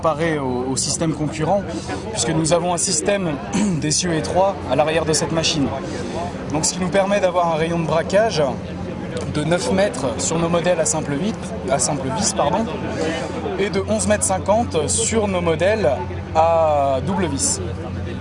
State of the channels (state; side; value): identical; both; correlation 1.00